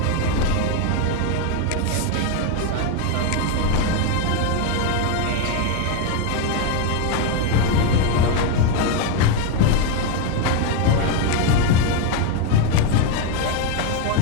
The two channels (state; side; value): different; both; correlation 0.02